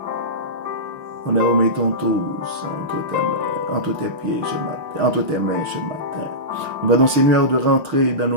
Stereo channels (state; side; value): late; left; 6.5 ms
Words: Nous les remettons tous entre tes pieds ce matin, entre tes mains ce matin. Nous demandons, Seigneur, de rentrer dans